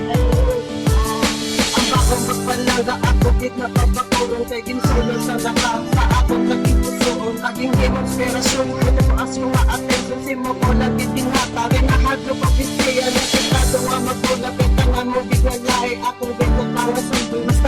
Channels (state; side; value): identical; both; correlation 1.00